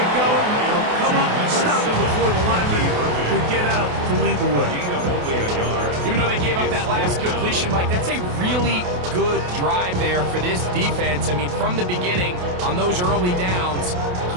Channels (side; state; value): left; late; 28 ms